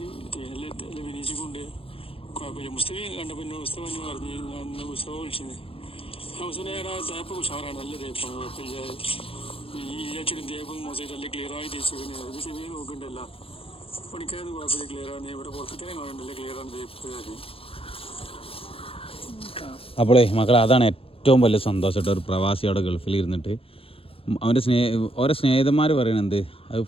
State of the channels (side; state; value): right; late; 0.27 ms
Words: വിനയിച്ചുകൊണ്ട് കുഴപ്പമില്ല. മുസ്തഫി കണ്ടപ്പോൾ മുസ്തഫ എന്ന് പറഞ്ഞ് ഞാൻ മുസ്തഫ വിളിച്ചത് മുസ്തഫ തേപ്പ് ഉഷാറാണ്, നല്ല തേപ്പാണ്, കുഴപ്പമില്ല. ഈ ഇരച്ചിടും തേപ്പും മോശമായിട്ട് നല്ല ക്ലിയറായി തേച്ച് പിന്നെ അത് ശരി നോക്കണ്ടല്ല പണിക്കാരൊന്നും കുഴപ്പമില്ല, ക്ലിയറാണ്. ഇവിടെ പുറത്തേക്കാനെ കാണണ്ടല്ലേ ക്ലിയറാണ് തേപ്പ്. അപ്പോളേ മക്കളെ അതാണ് ഏറ്റവും വലിയ സന്തോഷമായിട്ട് ഒരു പ്രവാസി അവിടെ ഗൾഫിൽ ഇരുന്നിട്ട് അവൻ്റെ ഓരോ സ്നേഹിതന്മാർ പറയണത് അത്